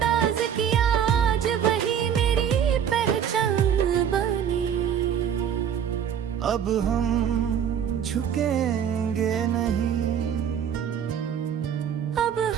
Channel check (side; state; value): left; quieter; 8.6 dB